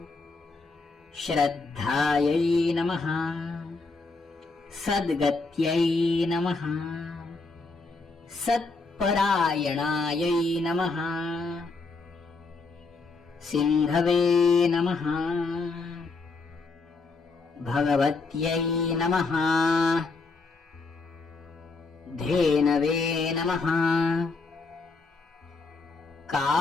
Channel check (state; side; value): quieter; right; 3.9 dB